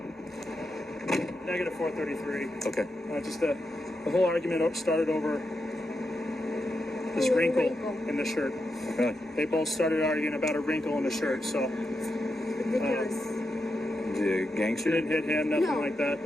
Negative 433. Okay. Just the whole argument started over this wrinkle in the shirt. Really? They both started arguing about a wrinkle in the shirt, so Ridiculous. The gangster? didn't hit him, nothing like that.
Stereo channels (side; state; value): both; normal; correlation 0.86